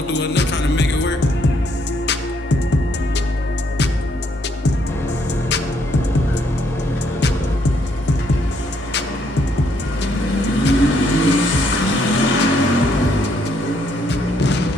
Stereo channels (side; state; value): both; normal; correlation 0.71